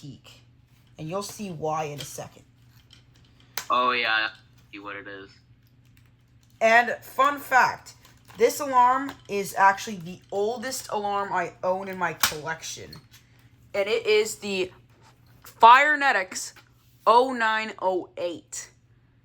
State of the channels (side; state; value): both; identical; correlation 1.00